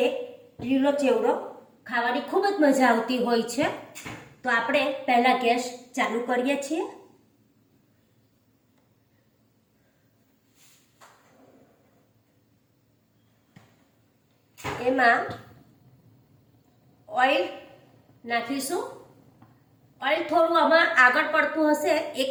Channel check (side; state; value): both; identical; correlation 1.00